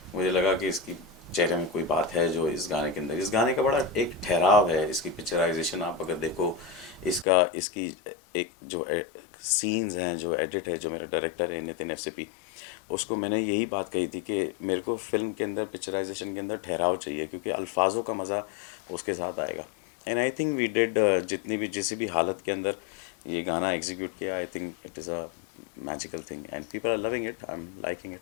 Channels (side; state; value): right; drops out; at 7.2 s